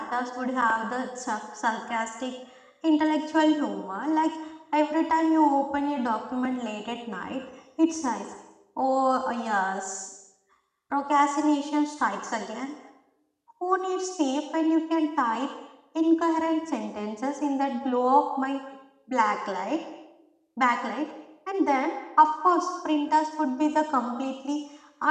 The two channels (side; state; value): both; identical; correlation 1.00